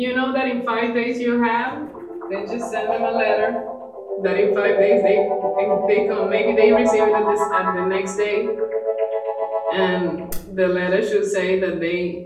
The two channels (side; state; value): both; identical; correlation 1.00